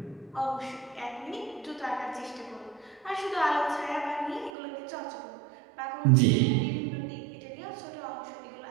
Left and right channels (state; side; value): drops out; left; at 4.5 s